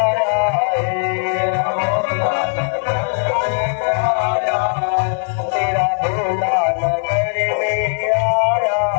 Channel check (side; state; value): right; silent; 67 dB below the other